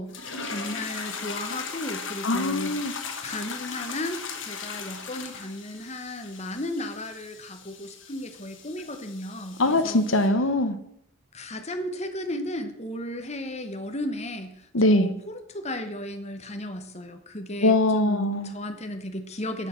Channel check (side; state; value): both; normal; correlation 0.21